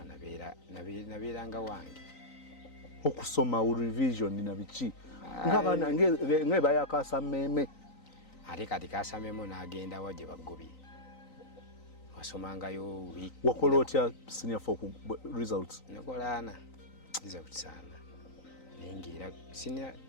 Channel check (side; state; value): right; late; 3.9 ms